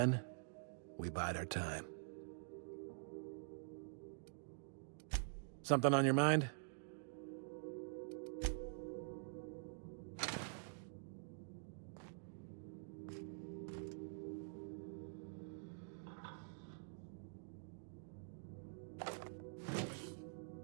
we bide our time. Something on your mind?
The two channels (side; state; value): left; silent; digital silence